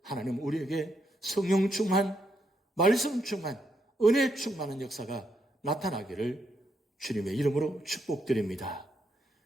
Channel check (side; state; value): both; normal; correlation 0.78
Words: 하나님 우리에게 성령 충만, 말씀 충만, 은혜 충만한 역사가 나타나기를 주님의 이름으로 축복드립니다.